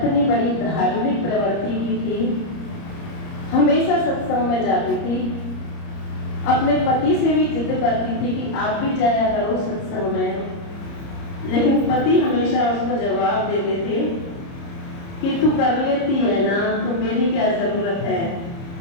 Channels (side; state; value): right; late; 30 ms